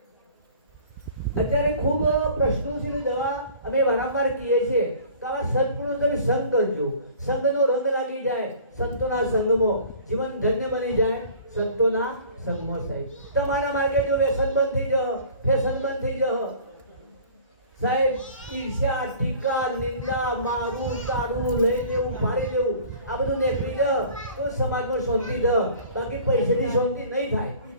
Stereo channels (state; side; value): inverted; both; correlation -0.47